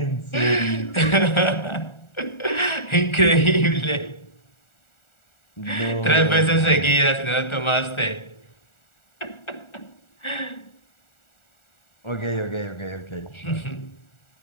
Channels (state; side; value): late; right; 1.4 ms